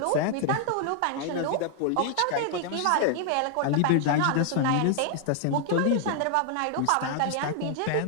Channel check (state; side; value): different; both; correlation 0.00